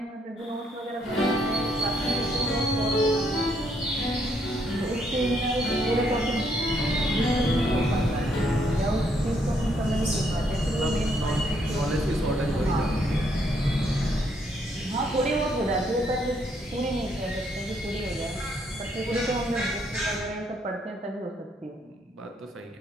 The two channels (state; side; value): normal; both; correlation 0.72